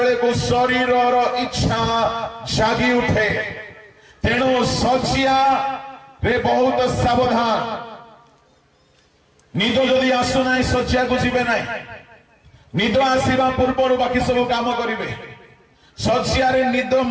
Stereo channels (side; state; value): both; identical; correlation 1.00